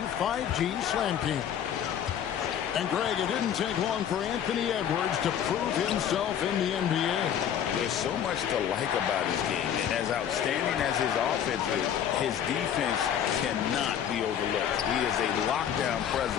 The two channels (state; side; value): quieter; right; 9.3 dB